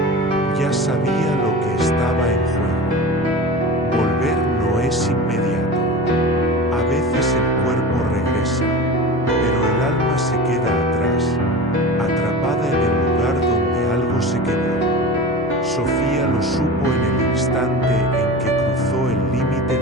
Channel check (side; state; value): both; normal; correlation 0.32